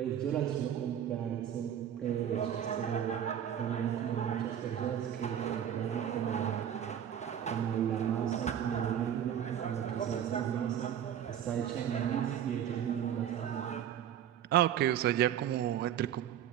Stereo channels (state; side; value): quieter; left; 9.8 dB